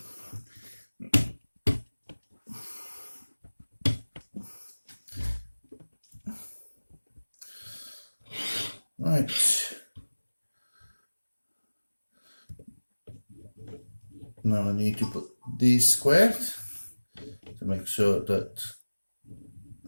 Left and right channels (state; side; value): inverted; both; correlation -1.00